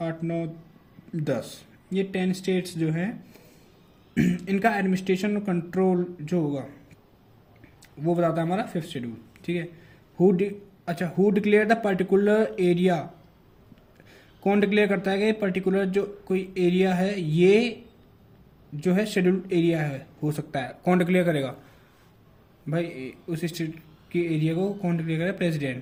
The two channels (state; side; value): identical; both; correlation 1.00